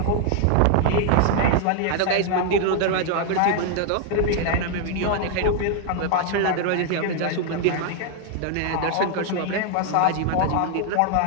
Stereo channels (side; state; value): both; different; correlation 0.00